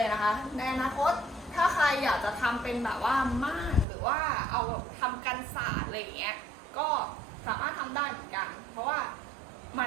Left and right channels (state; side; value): drops out; left; at 3.9 s